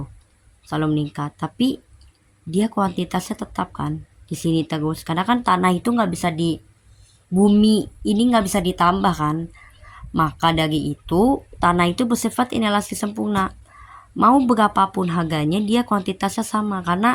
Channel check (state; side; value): identical; both; correlation 1.00